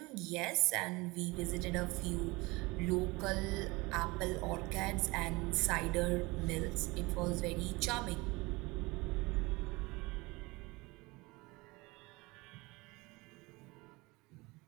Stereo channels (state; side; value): quieter; left; 23.7 dB